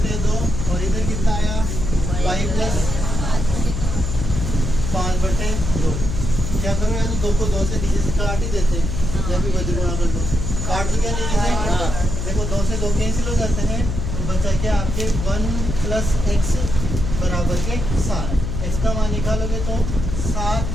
2, और इधर कितना आया? y प्लस 5 बटे 2। क्या करो यार, तो 2 को 2 से नीचे से काट ही देते हैं, जब भी वज्र गुणा कर दो, काट तो क्या नहीं देते? देखो 2 से 2 कैंसिल हो जाते हैं, तो बचा क्या आपके? 1 प्लस x बराबर के 7। x का मान निकालोगे तो 7,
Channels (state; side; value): noise; left; hum, 3 dB below the sound